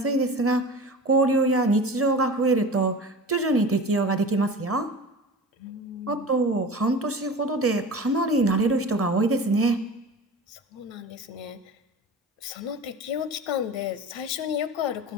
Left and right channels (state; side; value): normal; both; correlation 0.34